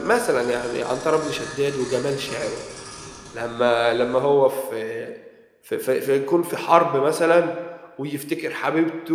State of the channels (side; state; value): both; identical; correlation 1.00